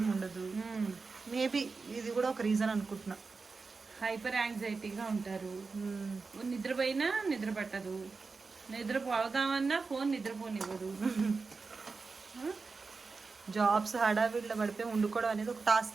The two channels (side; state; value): left; quieter; 4.4 dB